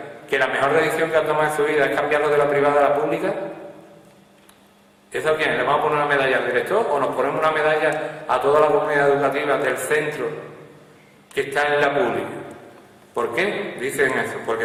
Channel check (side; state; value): both; identical; correlation 1.00